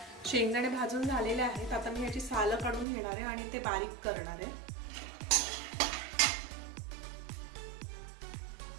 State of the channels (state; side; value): drops out; left; at 2.9 s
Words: शेंगदाणे भाजून झालेले आहेत। आता मी याची सालं काढून घेणार आहे आणि ते बारीक करणार आहे।